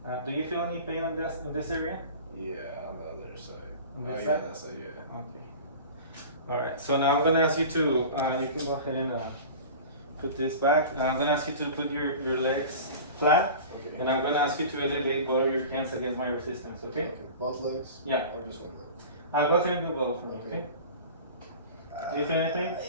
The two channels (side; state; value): both; inverted; correlation -0.37